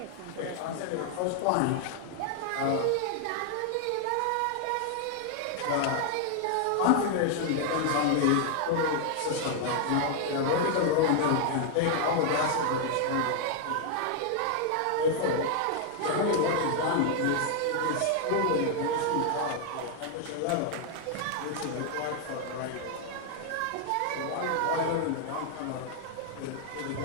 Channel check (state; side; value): different; both; correlation 0.00